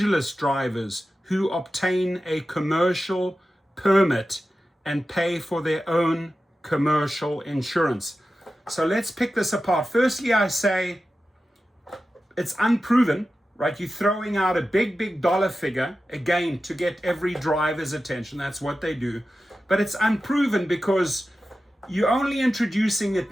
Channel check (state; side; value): normal; both; correlation 0.93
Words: drivers who obtain a commercial permit and pay for their own commercial insurance. So let's pick this apart. Firstly, I say it's unproven, right? You're throwing out a big dollar figure, again, to get every driver's attention. That's what they do. But it's unproven because you're only introducing it